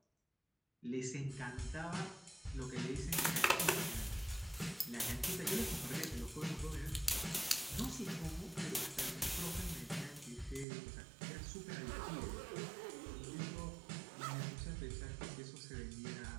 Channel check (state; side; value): drops out; left; at 10.7 s